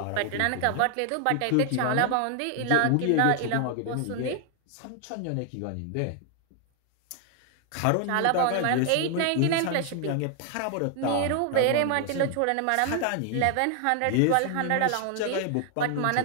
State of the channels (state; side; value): different; both; correlation 0.00